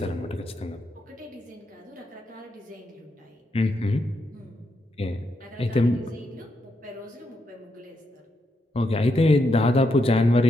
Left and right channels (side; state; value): both; normal; correlation 0.81